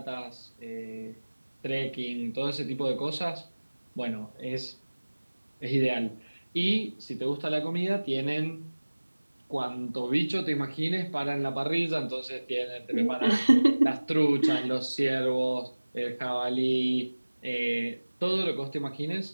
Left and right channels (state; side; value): inverted; both; correlation -1.00